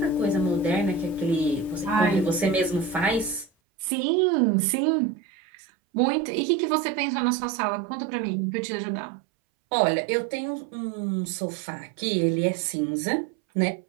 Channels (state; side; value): drops out; left; at 3.5 s